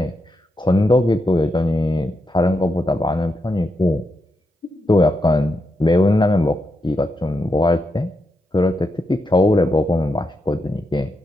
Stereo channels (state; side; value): normal; both; correlation 0.84